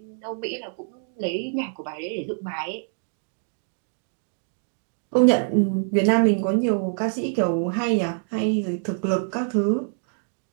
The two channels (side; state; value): left; silent; 61 dB below the other